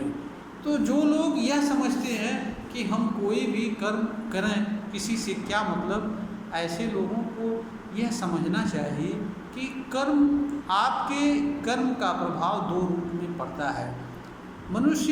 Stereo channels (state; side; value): identical; both; correlation 1.00